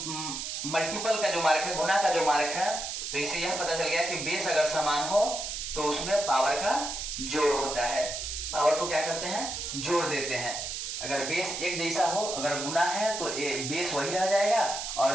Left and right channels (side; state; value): right; noise; hiss, 5 dB below the sound